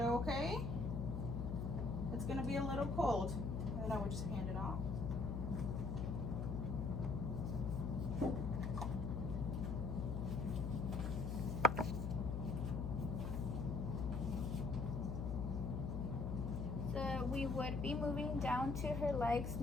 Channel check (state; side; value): noise; left; hum, 2 dB below the sound